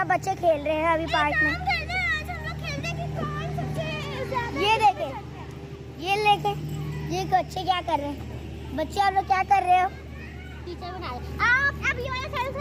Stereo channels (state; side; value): identical; both; correlation 1.00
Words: बच्चे खेल रहे हैं अभी पार्क में। ये देखे, ये लेके, ये बच्चे क्या कर रहे हैं? बच्चे आप लोग क्या कर रहे हो? टीचर बना रहे। आप अब ये वाला सेल्फ